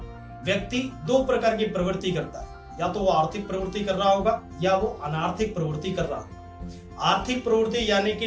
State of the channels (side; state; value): both; identical; correlation 1.00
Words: व्यक्ति दो प्रकार की प्रवृत्ति करता है, या तो वो आर्थिक प्रवृत्ति कर रहा होगा या वो अनार्थिक प्रवृत्ति कर रहा होगा। आर्थिक प्रवृत्ति यानी कि